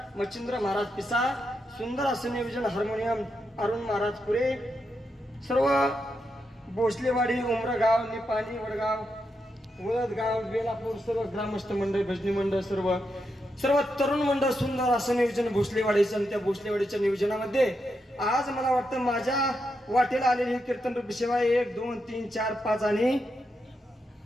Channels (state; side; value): normal; both; correlation 0.84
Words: मच्छिंद्र महाराज पिसा सुंदर असं नियोजन हार्मोनियम अरुण महाराज पुरे सर्व भोसलेवाडी उमरगाव निपाणी वडगाव वळदगाव बेलापूर सर्व ग्रामस्थ मंडळ भजनी मंडळ सर्व तरुण मंडळ सुंदर असं नियोजन भोसलेवाडीचं आणि त्या भोसलेवाडीच्या नियोजनामध्ये आज मला वाटतं माझ्या वाटेला आलेली कीर्तन रूपी सेवा 1 2 3 4 5 आणि